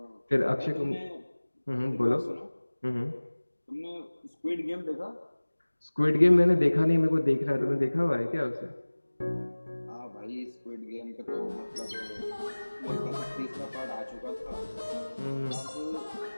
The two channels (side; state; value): both; inverted; correlation -1.00